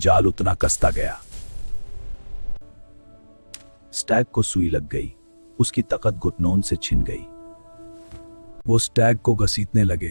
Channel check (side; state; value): both; inverted; correlation -1.00